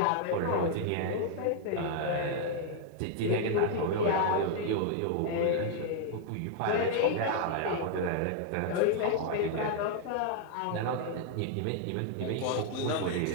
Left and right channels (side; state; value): both; different; correlation 0.00